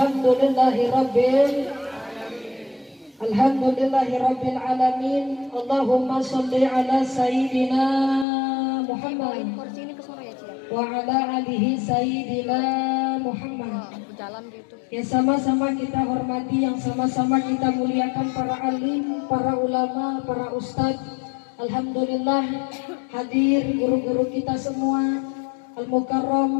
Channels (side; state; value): right; drops out; at 8.2 s